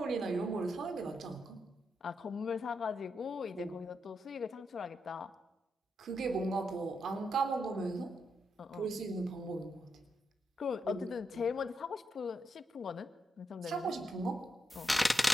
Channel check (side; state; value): both; normal; correlation 0.83